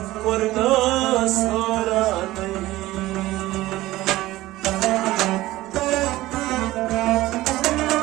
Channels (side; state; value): left; quieter; 17.2 dB